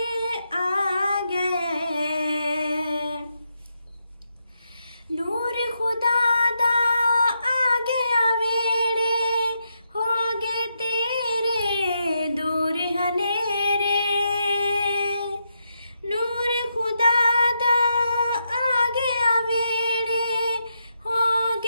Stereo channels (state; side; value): inverted; both; correlation -0.83